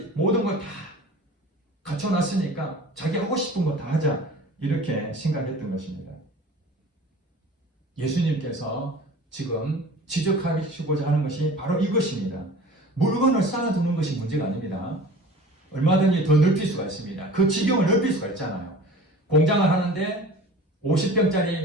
모든 걸 다 갖춰놨으니까 자기 하고 싶은 거 다 하자. 이렇게 생각했던 것입니다. 예수님께서 지금 지적하시고자 하는 것이 바로 이것입니다. 물건을 쌓아두는 것이 문제가 아닙니다. 얼마든지 더 넓힐 수가 있습니다. 그 지경을 넓힐 수가 있잖아요. 공장을 하는데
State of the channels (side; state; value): both; normal; correlation 0.42